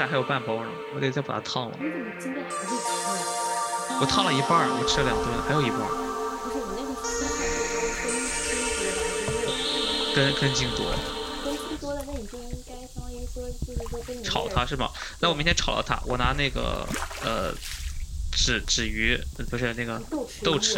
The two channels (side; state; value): both; identical; correlation 1.00